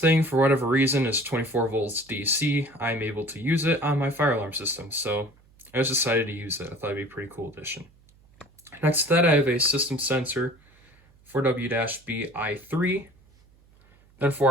for whatever reason, is 24 volts DC, I'm able to use it on my fire alarm system. So I just decided to use it. I thought it'd be a pretty cool addition. Next to that, I have a system sensor 4W-BI3. Then for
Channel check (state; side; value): noise; right; hum, 30 dB below the sound